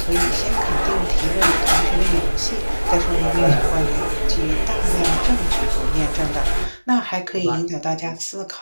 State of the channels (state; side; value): inverted; both; correlation -1.00